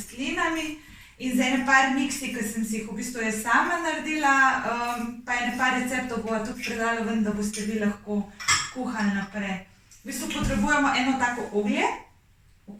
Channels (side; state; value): both; identical; correlation 1.00